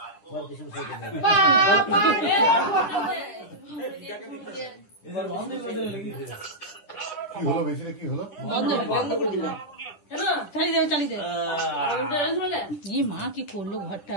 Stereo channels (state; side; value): late; right; 9.9 ms